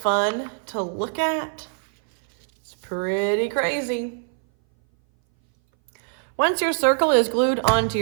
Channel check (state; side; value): silent; left; 60 dB below the other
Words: to look at? It's pretty crazy. Once your circle is glued onto